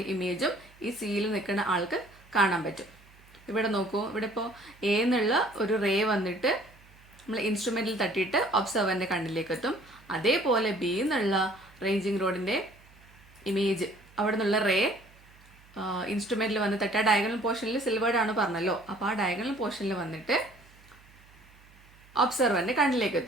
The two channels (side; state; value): right; noise; hum, 26 dB below the sound